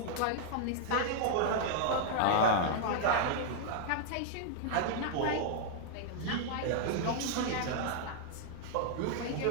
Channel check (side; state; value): both; different; correlation -0.01